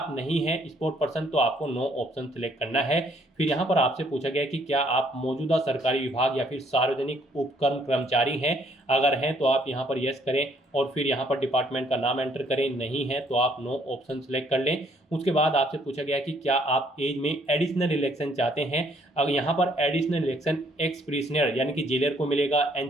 नहीं हैं स्पोर्ट पर्सन तो आपको नो ऑप्शन सेलेक्ट करना है। है। फिर यहाँ पर आपसे पूछा गया कि क्या आप मौजूदा सरकारी विभाग या फिर सार्वजनिक उपक्रम कर्मचारी हैं, अगर हैं तो आप यहाँ पर यस करें और फिर यहाँ पर डिपार्टमेंट का नाम एंटर करें, नहीं है तो आप नो ऑप्शन सेलेक्ट कर लें। उसके बाद आपसे पूछा गया कि क्या आप एज में एडिशनल इलेक्शन चाहते हैं, अगर यहाँ पर एडिशनल इलेक्शन एक्स प्रिजनर यानी कि जेलर को मिलेगा,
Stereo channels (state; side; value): normal; both; correlation 0.65